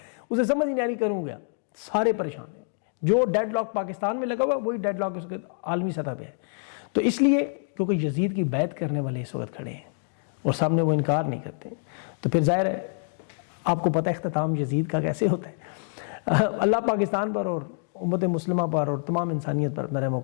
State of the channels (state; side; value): silent; right; digital silence